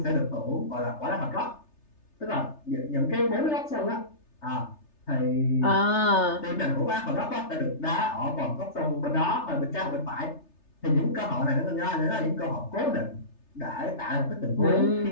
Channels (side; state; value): right; late; 3.3 ms